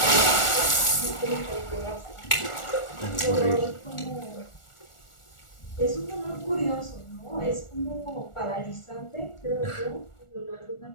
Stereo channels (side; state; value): right; late; 1.4 ms